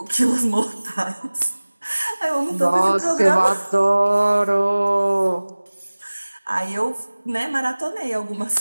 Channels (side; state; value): both; inverted; correlation -1.00